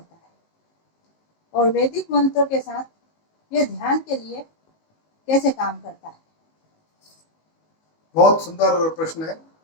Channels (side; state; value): right; late; 19 ms